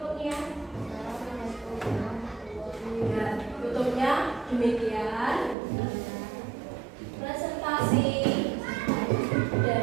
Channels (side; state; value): left; drops out; at 5.6 s